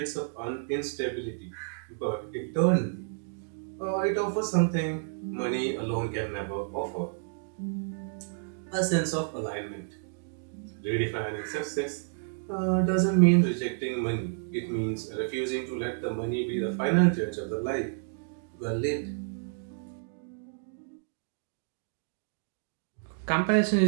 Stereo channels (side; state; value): left; silent; digital silence